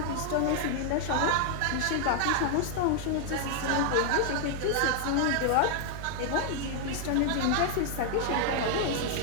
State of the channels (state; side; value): different; both; correlation 0.00